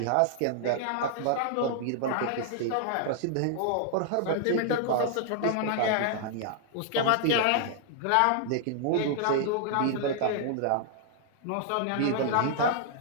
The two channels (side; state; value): both; different; correlation -0.01